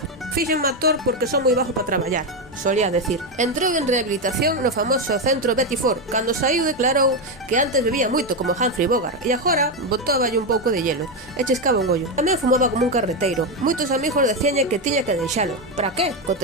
Fíxenme actor porque son moi bajo para traballar, solía decir. Entrou en rehabilitación no famoso centro Betty Ford. Cando saiu declarou que antes bebía moito como Humphrey Bogart e agora botáballe un pouco de hielo e chiscaba un ollo. Tamén fumaba como un carreteiro. Moitos amigos decíanlle que tiña que deixalo. Para que?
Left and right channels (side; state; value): both; normal; correlation 0.09